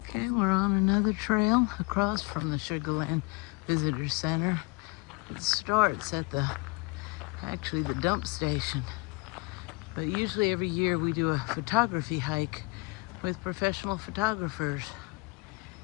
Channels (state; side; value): quieter; right; 28.5 dB